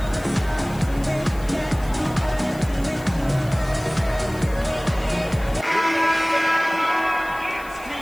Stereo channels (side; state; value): left; noise; hiss, 21 dB below the sound